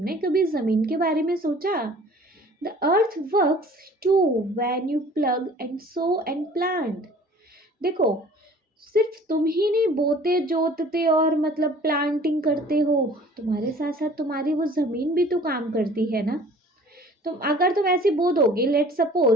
कभी ज़मीन के बारे में सोचा? The earth works too when you plough and sow and plant. देखो, सिर्फ तुम ही नहीं बोते जोतते और मतलब प्लांटिंग करते हो, तुम्हारे साथ साथ तुम्हारी वो ज़मीन भी तो काम करती है ना। अगर तुम ऐसे बो दोगे, लेट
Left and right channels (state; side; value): normal; both; correlation 0.49